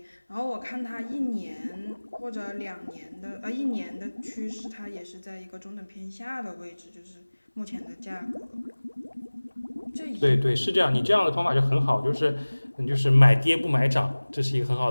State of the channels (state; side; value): inverted; both; correlation -1.00